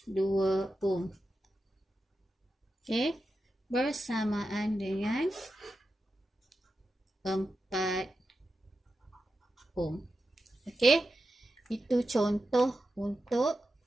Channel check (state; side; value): normal; both; correlation 0.90